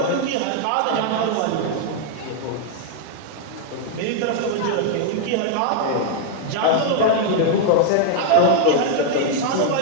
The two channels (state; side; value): different; both; correlation -0.01